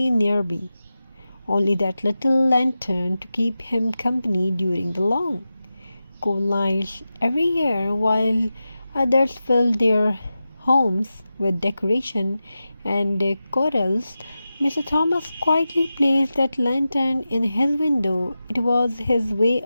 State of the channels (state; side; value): inverted; both; correlation -0.93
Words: nearby, only that little lantern to keep him company during the long, cold nights every year while others filled their homes with decoration and corals. Mr. Thomas quietly placed that lantern in his window. It was his way